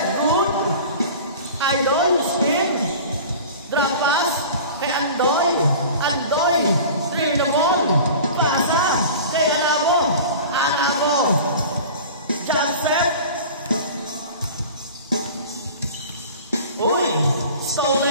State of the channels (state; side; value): inverted; both; correlation -0.39